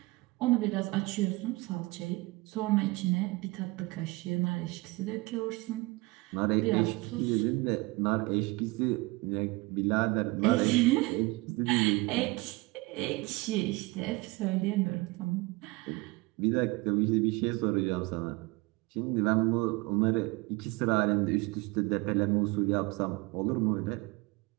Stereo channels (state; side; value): quieter; left; 23.6 dB